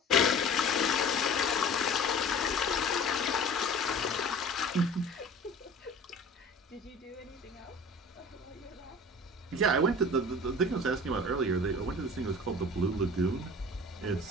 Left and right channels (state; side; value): normal; both; correlation 0.42